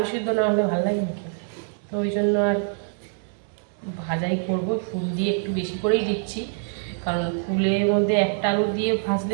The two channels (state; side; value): silent; left; 62 dB below the other